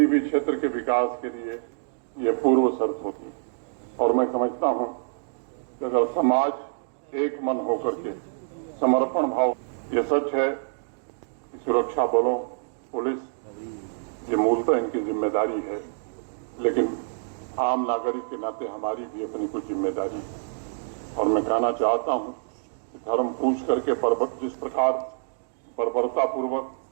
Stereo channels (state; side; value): silent; left; digital silence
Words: भी क्षेत्र के विकास के लिए यह पूर्व शर्त होती और मैं समझता हूं कि अगर समाज एक मन होकर के समर्पण भाव, यह सच है कि सुरक्षा बलों, पुलिस, ये मूलतः इनकी जिम्मेदारी है, लेकिन आम नागरिक के नाते हमारी भी अपनी कुछ जिम्मेदारी है। और मैं कहना चाहता हूं कि धर्म पूछ करके जिस प्रकार बर्बरतापूर्वक